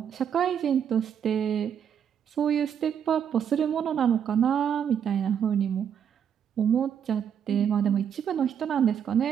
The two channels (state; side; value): quieter; left; 8.3 dB